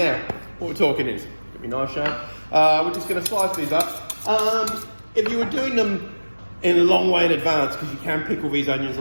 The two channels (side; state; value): both; inverted; correlation -1.00